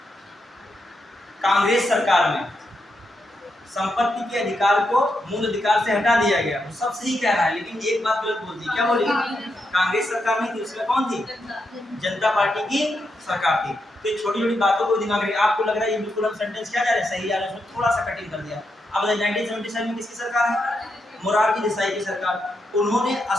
कांग्रेस सरकार में संपत्ति के अधिकार को मूल अधिकार से हटा दिया गया। वो सब सही कह रहा है, लेकिन एक बात गलत बोल दी। क्या बोली? कांग्रेस सरकार नहीं थी, उसमें कौन थी? जनता पार्टी की सरकार थी। तो ये छोटी छोटी बातों को दिमाग में, आपको लग रहा है ये बिल्कुल हम सेंटेंस क्या जा रहे हैं सही जा रहे हैं, उसमें थोड़ा सा कटिंग कर दिया। अब 1977 में किसकी सरकार है? मोरारजी देसाई की सरकार। उन्होंने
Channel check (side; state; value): both; normal; correlation 0.83